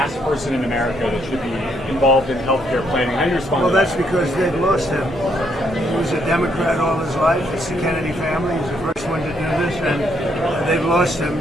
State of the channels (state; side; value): normal; both; correlation 0.72